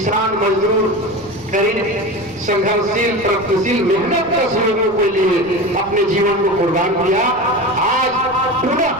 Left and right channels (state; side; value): noise; right; rumble, 22 dB below the sound